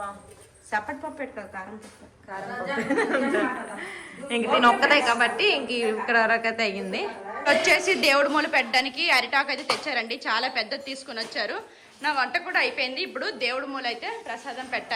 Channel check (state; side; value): identical; both; correlation 1.00